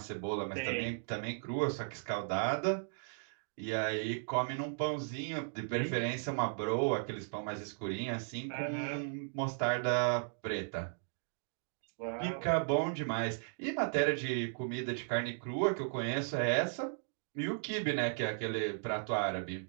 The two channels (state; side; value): silent; left; digital silence